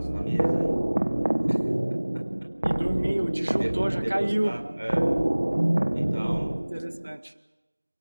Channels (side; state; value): both; inverted; correlation -1.00